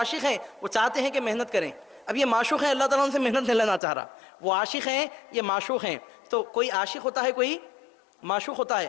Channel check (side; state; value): right; drops out; at 3.8 s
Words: हैं, वो चाहते हैं कि मेहनत करें। अब ये माशूक़ हैं, अल्लाह ताला उनसे मेहनत नहीं लेना चाह रहा, वो आशिक हैं, ये माशूक़ हैं। तो कोई आशिक होता है, कोई माशूक़ होता